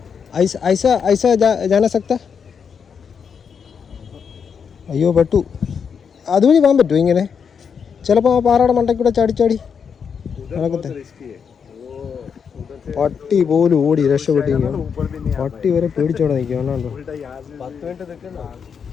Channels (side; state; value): right; quieter; 6.7 dB